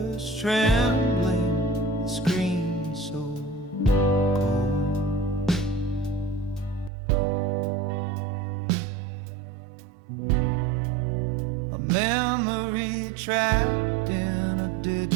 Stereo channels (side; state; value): left; drops out; at 6.9 s